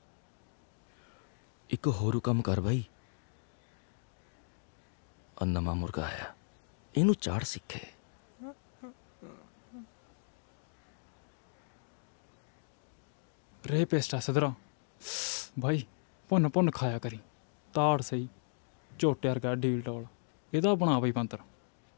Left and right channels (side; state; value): right; silent; digital silence